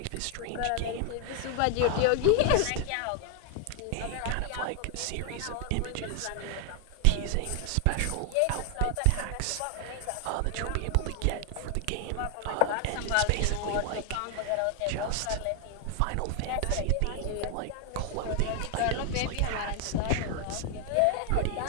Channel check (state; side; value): different; both; correlation 0.00